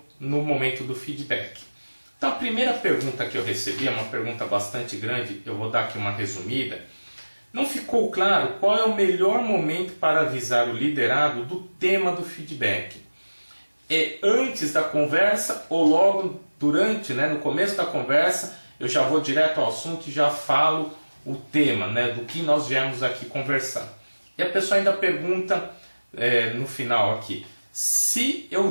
no momento do feedback. Então a primeira pergunta que eu recebi é uma pergunta bastante grande, eu vou dar aqui uma resumida. Não ficou claro qual é o melhor momento para avisar o liderado do tema do feedback. É antes da conversa ou logo durante, no começo da conversa, eu já vou direto ao assunto e já falo o tema, do que nós viemos aqui conversar. E a pessoa ainda pergunta no final aqui, se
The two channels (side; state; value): both; inverted; correlation -1.00